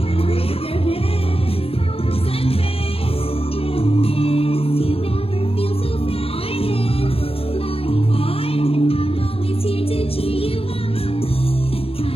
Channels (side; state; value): right; late; 0.28 ms